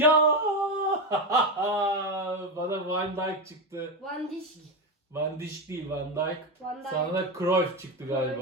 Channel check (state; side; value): normal; both; correlation 0.13